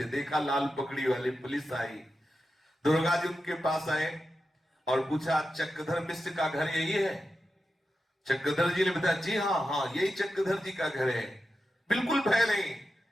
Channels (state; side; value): normal; both; correlation 0.90